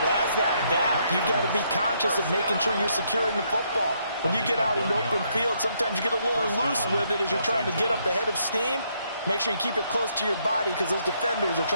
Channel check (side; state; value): both; inverted; correlation -0.73